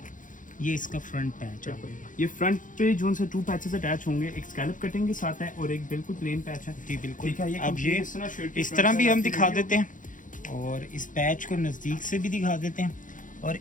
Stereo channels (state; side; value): late; right; 0.38 ms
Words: ये इसका फ्रंट पैच है, ये फ्रंट पे जो 2 पैचेस अटैच होंगे, एक स्कैलप कटिंग के साथ है और एक बिल्कुल प्लेन पैच है। जी बिल्कुल। ठीक है, ये अब ये इस तरह भी हम दिखा देते हैं, और इस पैच को नज़दीक से भी दिखा देते हैं, और